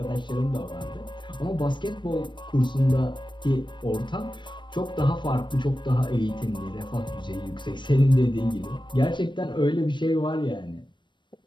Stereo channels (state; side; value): late; right; 0.22 ms